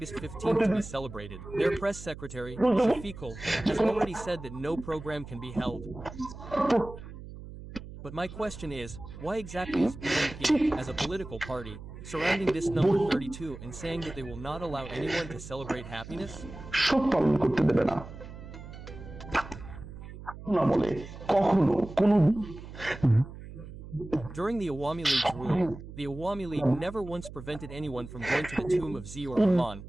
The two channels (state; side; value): noise; right; hum, 13 dB below the sound